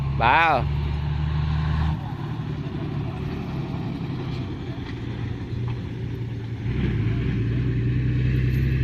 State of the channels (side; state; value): both; identical; correlation 1.00